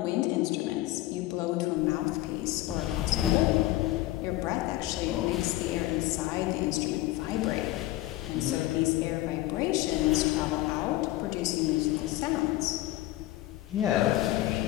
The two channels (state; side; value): quieter; right; 16.5 dB